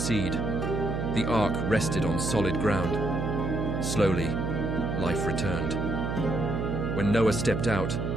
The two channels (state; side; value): noise; right; hum, 1 dB below the sound